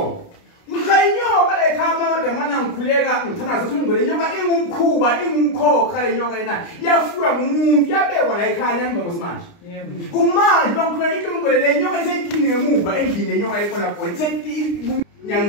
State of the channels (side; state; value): right; late; 29 ms